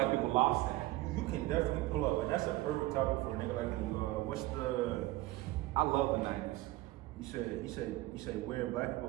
people lost that. You can definitely pull up, and that's a perfect topic for a nigga like me. I love the 90s. You said where black people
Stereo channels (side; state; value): left; quieter; 18.5 dB